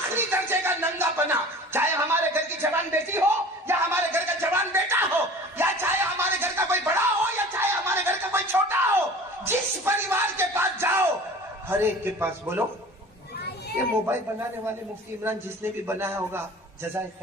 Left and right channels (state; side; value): normal; both; correlation 0.42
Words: درجے کا ننگا پنا، چاہے ہمارے گھر کی جوان بیٹی ہو یا ہمارے گھر کا جوان بیٹا ہو، یا چاہے ہمارے گھر کا کوئی بڑا ہو یا چاہے ہمارے گھر کا کوئی چھوٹا ہو، جس پریوار کے پاس جاؤ ہر ایک کے پاس بولو یہ موبائل بنانے والے مفتی عمران جس نے بھی بنایا ہوگا جزائے